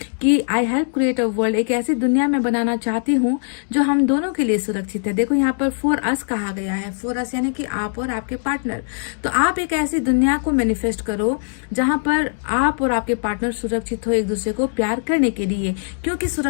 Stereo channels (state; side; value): silent; right; digital silence